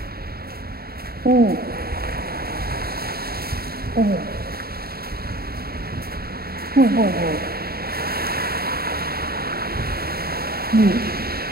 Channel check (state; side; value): late; left; 0.45 ms